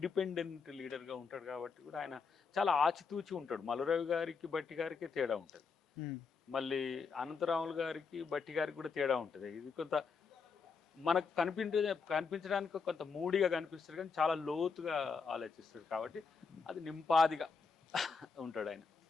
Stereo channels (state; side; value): quieter; right; 5.2 dB